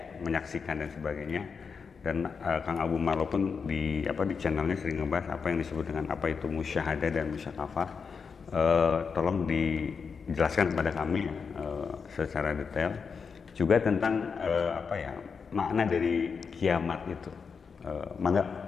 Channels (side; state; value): right; quieter; 5.7 dB